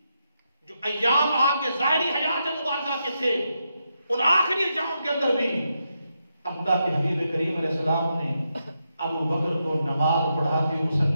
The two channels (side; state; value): both; inverted; correlation -0.84